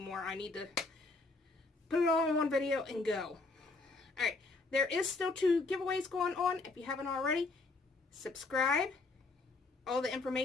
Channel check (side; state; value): right; quieter; 3.5 dB